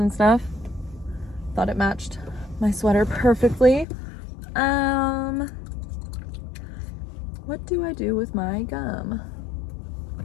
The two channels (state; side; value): drops out; right; at 3.9 s